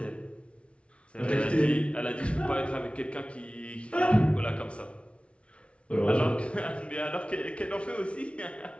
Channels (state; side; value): late; right; 0.060 ms